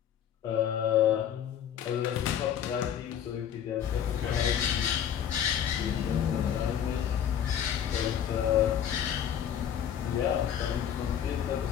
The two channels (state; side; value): quieter; right; 9.4 dB